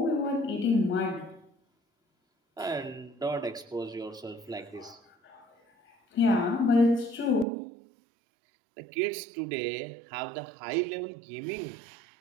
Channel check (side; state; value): left; drops out; at 7.5 s